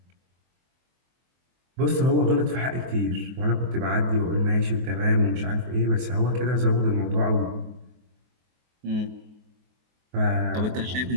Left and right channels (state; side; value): late; left; 23 ms